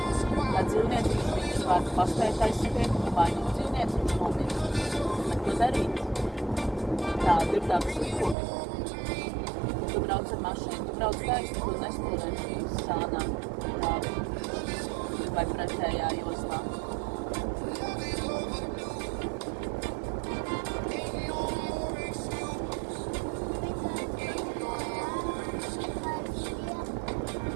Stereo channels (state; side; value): drops out; left; at 8.3 s